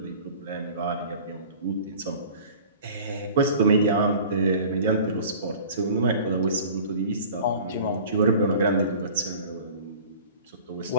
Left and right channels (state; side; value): inverted; both; correlation -0.43